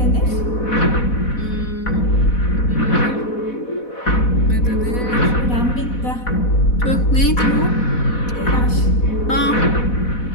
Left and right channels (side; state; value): right; late; 4.1 ms